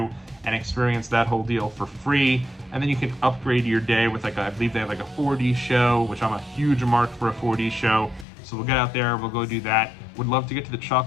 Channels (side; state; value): right; drops out; at 8.2 s